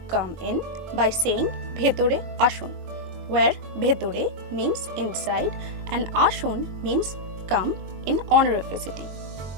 come in by saying bhetore ashun, where bhetore means inside and ashun means come in honorificity,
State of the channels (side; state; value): left; late; 22 ms